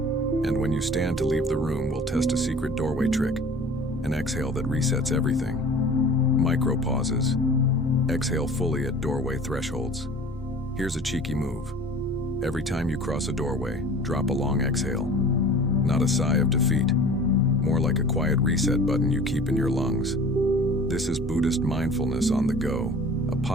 when you stand to leave the room, we'll test a secret doorway trick, an exhale that resets everything. Micro pauses. Exhale fully at doorway thresholds. Here's a cheeky move. Every time you cross a doorway, drop a long exhale. Not a sigh of defeat, more like a quiet reset button you keep in your lungs. This is Buddhist mindfulness on the go, a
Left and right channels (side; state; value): both; normal; correlation 0.44